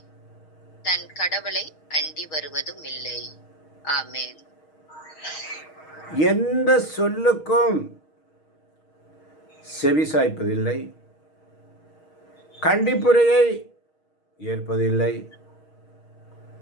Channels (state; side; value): late; right; 6.4 ms